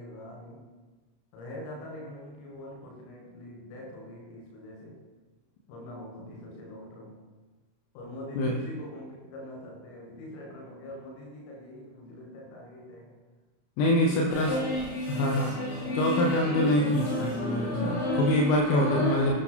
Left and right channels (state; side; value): late; right; 34 ms